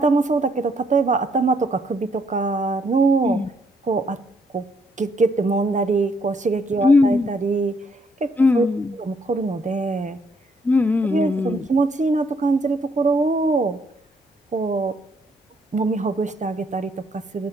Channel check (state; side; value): normal; both; correlation 0.70